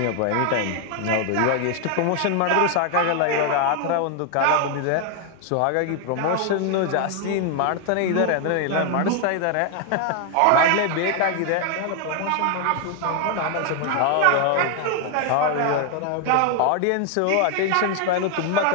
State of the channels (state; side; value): different; both; correlation 0.00